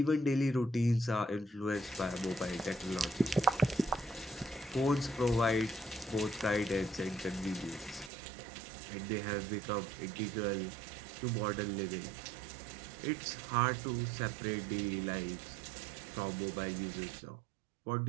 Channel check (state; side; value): drops out; left; at 8.1 s